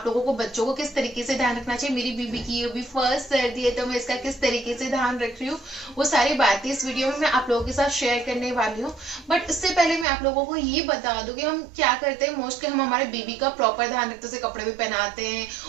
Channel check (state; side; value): drops out; left; at 10.1 s